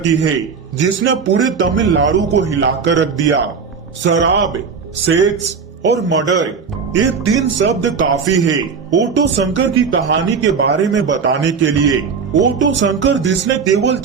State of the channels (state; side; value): quieter; left; 5.8 dB